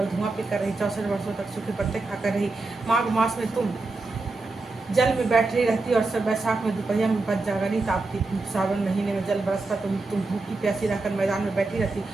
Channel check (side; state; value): left; quieter; 3.4 dB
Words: धुआं पीकर रही। 64 वर्षों तक सूखे पत्ते खाकर रही। माघ मास में तुम जल में बैठ रही रहती और सब बैसाख में दोपहर में बच जागनी तापती। सावन महीने में जल बरसता तुम भूखी प्यासी रहकर मैदान में बैठी रहती।